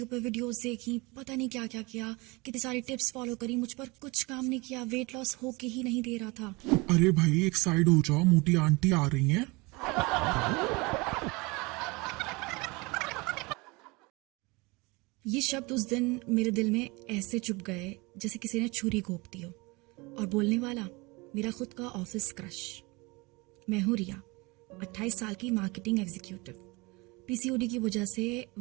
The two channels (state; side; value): quieter; left; 25.5 dB